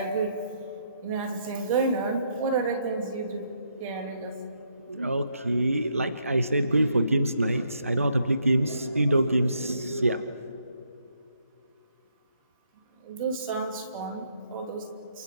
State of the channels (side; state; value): both; inverted; correlation -0.74